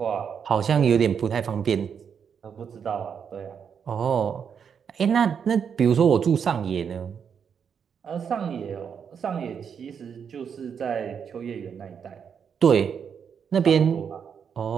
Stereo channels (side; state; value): left; quieter; 7.2 dB